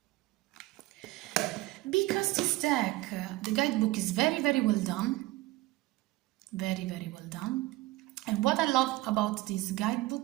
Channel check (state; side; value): quieter; left; 19.0 dB